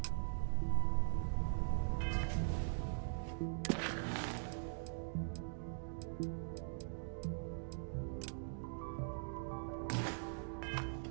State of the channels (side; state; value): left; silent; digital silence